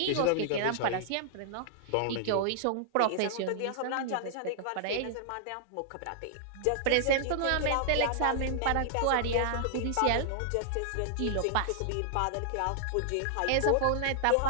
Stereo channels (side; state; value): both; different; correlation -0.01